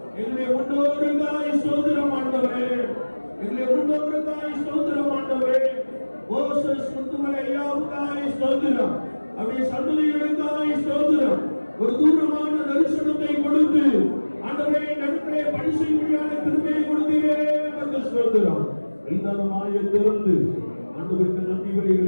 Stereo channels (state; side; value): inverted; both; correlation -1.00